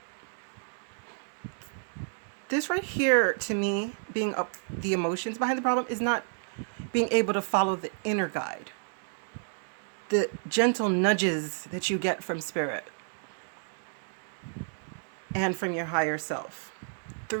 this right here, to me, being the emotions behind the problem is not being able to follow the inner guide, the gentle nudges that you get from spirit and from your higher self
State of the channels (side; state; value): left; silent; digital silence